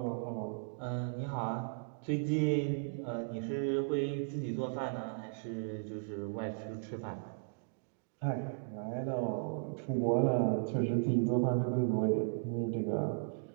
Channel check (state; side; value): silent; left; digital silence